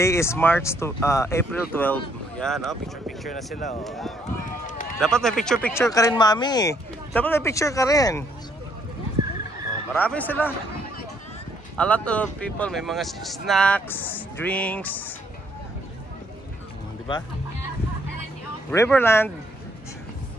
is April 12. Yan, oh, picture na sila. Oh. Dapat may picture ka rin, mami. Dapat may picture ka rin. Oh, marami sila. A lot of people, may mga snacks, drinks. Di ba? Riverland.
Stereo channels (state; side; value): normal; both; correlation 0.69